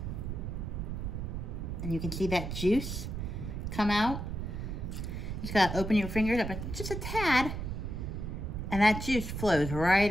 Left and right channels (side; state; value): right; noise; rumble, 4 dB below the sound